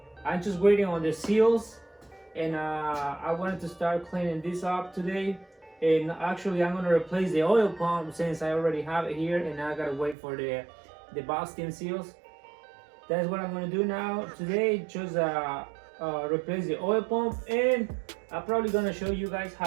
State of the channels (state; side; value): drops out; left; at 10.2 s